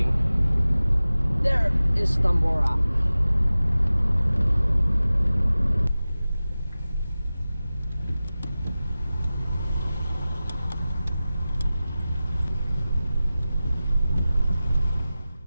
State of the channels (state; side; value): inverted; both; correlation -0.96